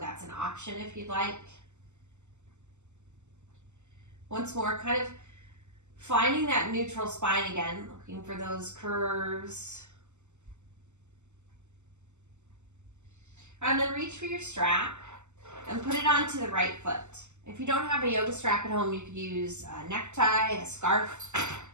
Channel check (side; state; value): left; late; 0.83 ms